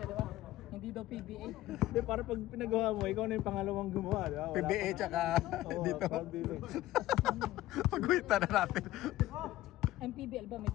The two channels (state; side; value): quieter; right; 15.6 dB